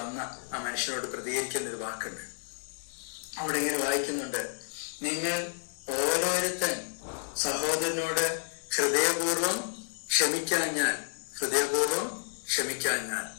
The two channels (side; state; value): right; silent; digital silence